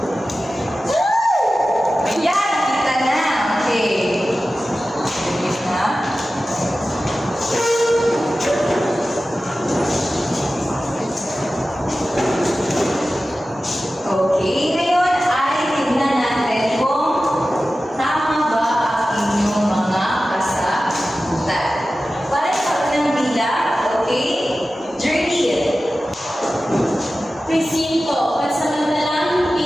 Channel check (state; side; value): normal; both; correlation 0.95